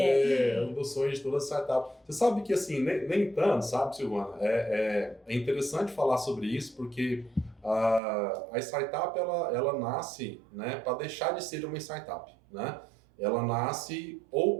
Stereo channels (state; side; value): drops out; left; at 8.0 s